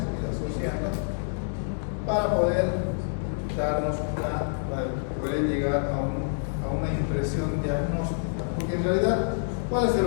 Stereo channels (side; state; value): right; silent; digital silence